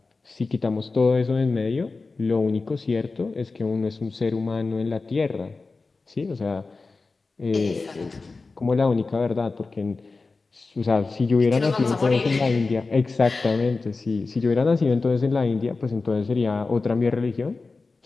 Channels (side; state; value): right; quieter; 3.9 dB